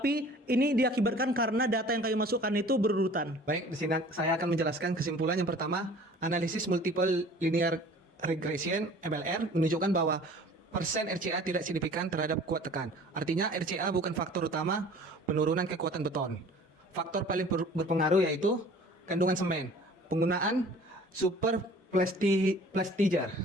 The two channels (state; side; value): normal; both; correlation 0.48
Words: ini diakibatkan karena data yang kami masukkan itu berurutan. Baik, di sini saya akan menjelaskan kesimpulan yang pertama. Analisis multiple linear regression (MLR) menunjukkan bahwa persen RCA tidak signifikan terhadap kuat tekan. Artinya RCA bukan faktor utama penurunan kekuatan beton. Faktor paling berpengaruh yaitu kandungan semen, penggunaan super plasticizer.